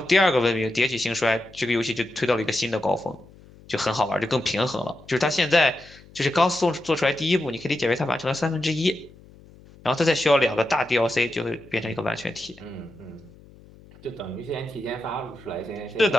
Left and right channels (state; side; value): noise; left; hum, 23 dB below the sound